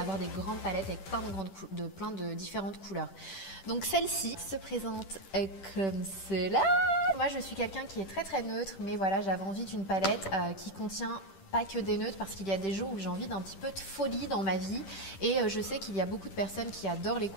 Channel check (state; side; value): late; right; 10 ms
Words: des grandes palettes avec plein de différentes couleurs. Donc celle-ci se présente comme cela. Moi, je suis quelqu'un qui est très très neutre, mais voilà, j'avais envie d'une palette qui contient pas que des neutres parce qu'il y a des jours où j'ai envie d'un petit peu de folie dans ma vie et je sais qu'il y a beaucoup de personnes qui adorent les